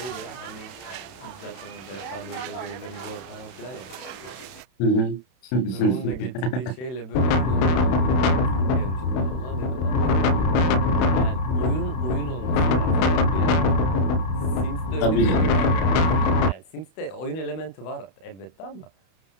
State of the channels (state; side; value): late; right; 31 ms